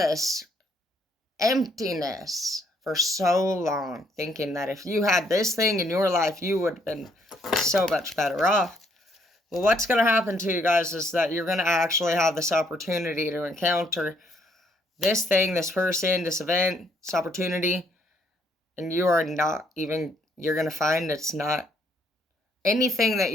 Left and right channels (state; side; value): normal; both; correlation 0.69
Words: emptiness for so long. Thinking that if you had this thing in your life, you would have been so much better off. Well, what's going to happen to you guys is that you're going to actually have this opportunity to encounter this thing, this person, this event, this opportunity. And you are not even, you're going to find it's not anything that